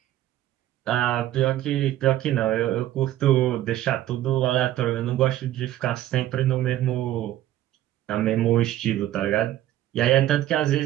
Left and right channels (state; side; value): quieter; left; 13.6 dB